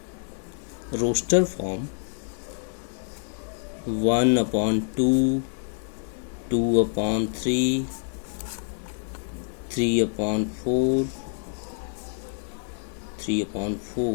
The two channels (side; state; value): right; silent; digital silence